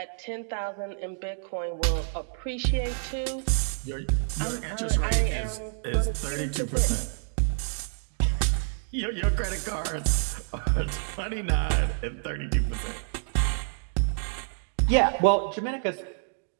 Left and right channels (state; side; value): silent; left; digital silence